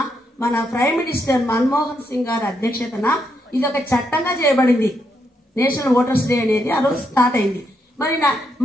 మన ప్రైమ్ మినిస్టర్ మన్మోహన్ సింగ్ గారి అధ్యక్షతన ఇది ఒక చట్టంగా చేయబడింది. నేషనల్ ఓటర్స్ డే అనేది ఆ రోజు స్టార్ట్ అయింది. మరి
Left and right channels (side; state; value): both; normal; correlation 0.79